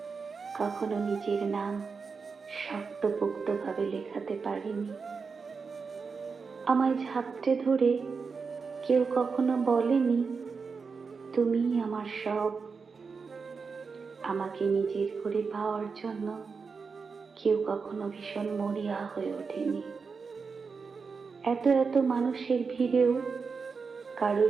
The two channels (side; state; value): left; quieter; 5.1 dB